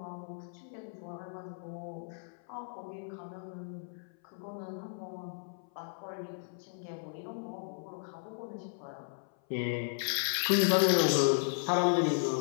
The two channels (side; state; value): right; silent; 54 dB below the other